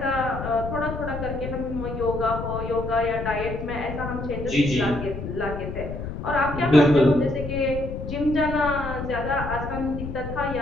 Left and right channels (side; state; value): left; noise; rumble, 7 dB below the sound